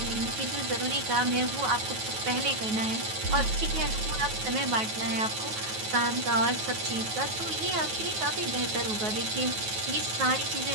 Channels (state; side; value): late; left; 9.3 ms